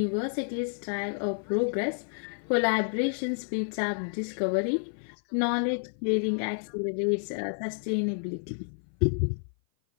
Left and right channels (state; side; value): silent; right; 56 dB below the other